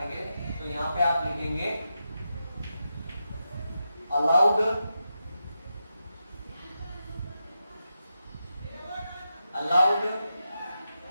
तो यहाँ पे आप लिखेंगे allowed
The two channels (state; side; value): inverted; both; correlation -0.88